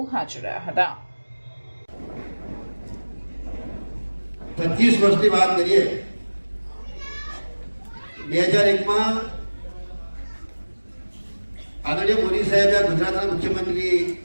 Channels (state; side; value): inverted; both; correlation -1.00